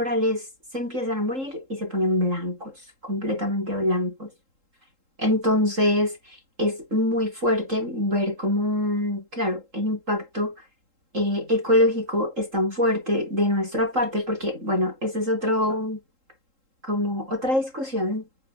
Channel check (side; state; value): left; late; 3.8 ms